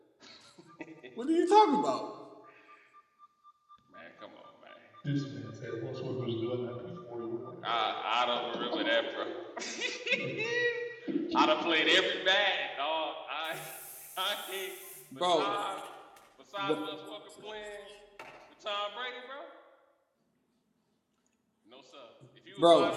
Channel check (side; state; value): both; identical; correlation 1.00